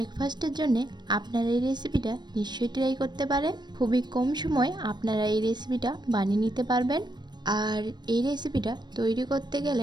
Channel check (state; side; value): late; left; 0.21 ms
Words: জন্য আপনারা এই রেসিপিটা নিশ্চয়ই ট্রাই করতে পারেন। খুবই কম সময় আপনারা এই রেসিপিটা বানিয়ে নিতে পারবেন। আর এই রেসিপিটা তৈরি করতে